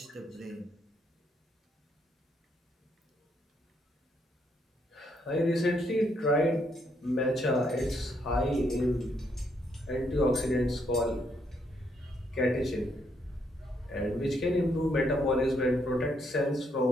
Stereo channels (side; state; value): both; normal; correlation 0.74